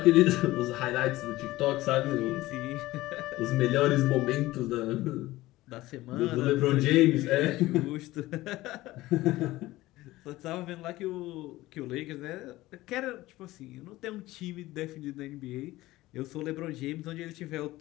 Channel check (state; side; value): quieter; right; 17.7 dB